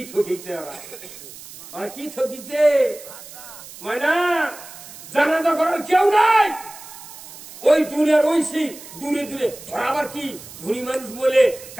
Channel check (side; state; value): right; noise; hiss, 16 dB below the sound